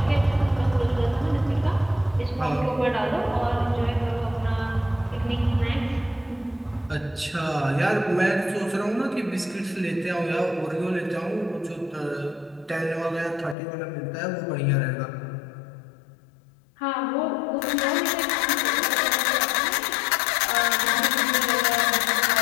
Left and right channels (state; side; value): drops out; right; at 13.6 s